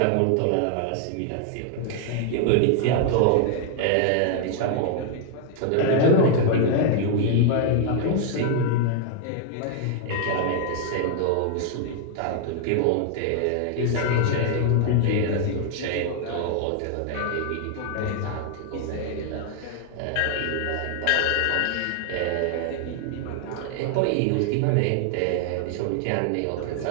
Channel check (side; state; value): both; different; correlation 0.00